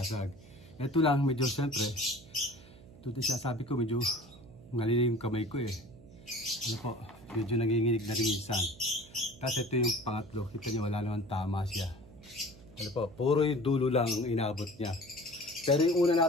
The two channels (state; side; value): noise; right; hum, 21 dB below the sound